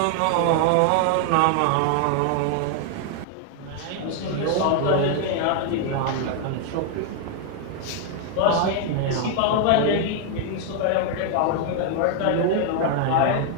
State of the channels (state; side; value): different; both; correlation 0.00